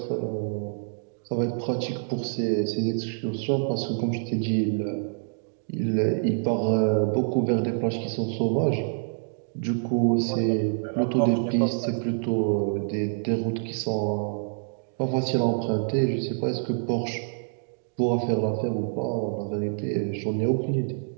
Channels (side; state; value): left; silent; digital silence